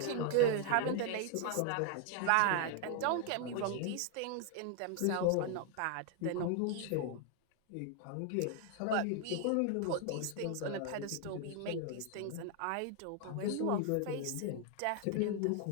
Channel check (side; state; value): both; different; correlation 0.00